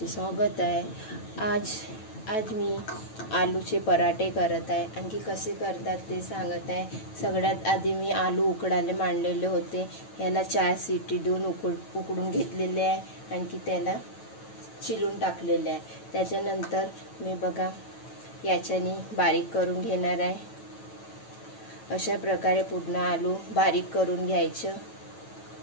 स्वागत आहे। आज मी आलूचे पराठे करत आहे। आणखी कसे करतात ते सांगत आहे। सगळ्यात आधी मी आलू उकडायला मांडलेले होते। याला 4 शिटी देऊन उकडून घेतलेले आहे। आणखी त्याला चिरून टाकलेले आहे। त्याच्यानंतर मी बघा याच्याने बारीक करून घेणार आहे। अशा प्रकारे पूर्ण आलू बारीक करून घ्यायचं।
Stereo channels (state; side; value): late; right; 9.1 ms